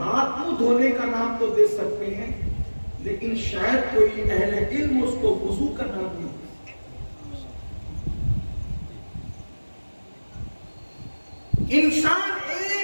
منہ دھونے کا نام تو دے سکتے ہیں، لیکن شاید کوئی اہل علم اس کو وضو کا نام نہیں۔ انسان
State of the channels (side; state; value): both; inverted; correlation -1.00